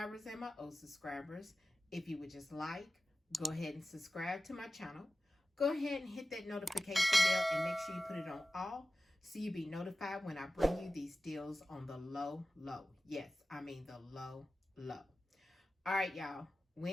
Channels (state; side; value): normal; both; correlation 0.95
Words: and my old subscribers. If you would just like, go ahead and subscribe to my channel. Go ahead and hit that notification bell and make sure you put it on all so you'll be notified when I bring you these deals on the low. Yes, I mean the low. All right, y'all.